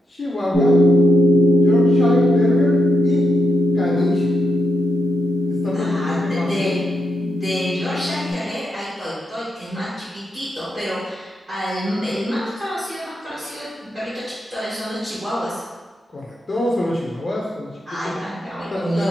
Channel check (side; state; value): both; normal; correlation 0.83